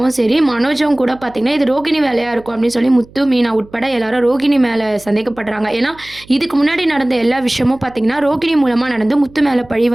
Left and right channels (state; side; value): noise; right; hum, 24 dB below the sound